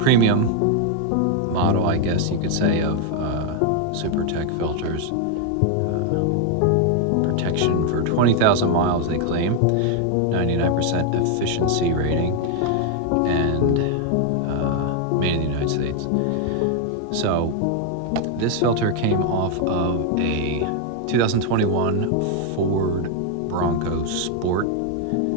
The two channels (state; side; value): different; both; correlation 0.01